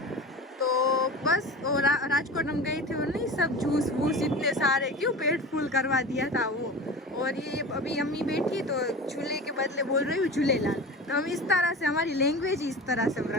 तो बस और राजकोट हम गए थे, और नहीं सब जूस वूस इतने सारे, क्यों पेट फुल करवा दिया था वो। और ये अभी अम्मी बैठी तो झूले के बदले बोल रही हूँ झूलेलाल। तो हम इस तरह से, हमारी लैंग्वेज इस तरह से हम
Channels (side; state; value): both; normal; correlation 0.33